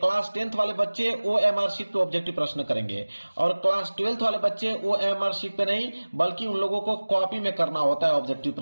10th वाले बच्चे OMR शीट पे ऑब्जेक्टिव प्रश्न करेंगे और क्लास 12th वाले बच्चे OMR शीट पे नहीं बल्कि उन लोगों को कॉपी में करना होता है ऑब्जेक्टिव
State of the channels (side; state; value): both; inverted; correlation -1.00